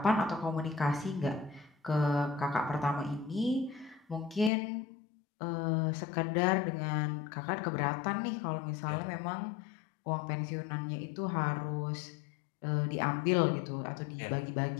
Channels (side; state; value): right; drops out; at 4.5 s